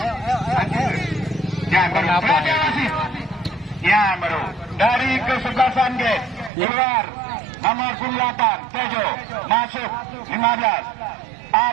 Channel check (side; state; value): left; drops out; at 6.5 s